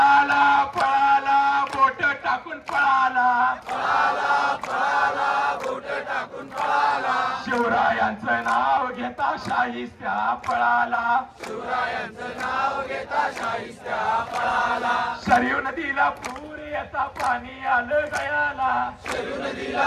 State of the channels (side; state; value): both; identical; correlation 1.00